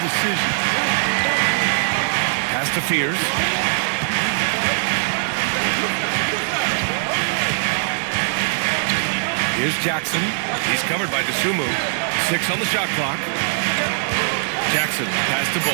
decisions. Pass to Fears. Here's Jackson. He's covered by Dosunmu. 6 on the shot clock. Jackson, pass to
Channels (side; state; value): left; silent; 61 dB below the other